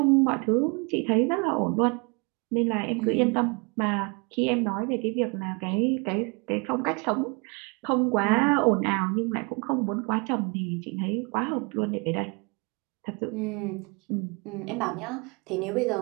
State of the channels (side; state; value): left; quieter; 31.0 dB